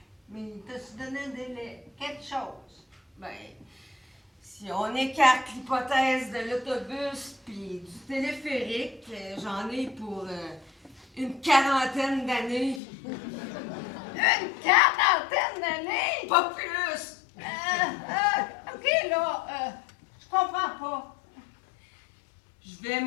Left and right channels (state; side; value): drops out; right; at 12.8 s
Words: Mais il t'a-tu donné un délai? Quelque chose? Ben, si on écarte l'hypothèse de l'autobus puis du téléphérique, j'en ai pour une quarantaine d'années. Une quarantaine d'années? Pas plus! OK, là, je comprends pas. Je vais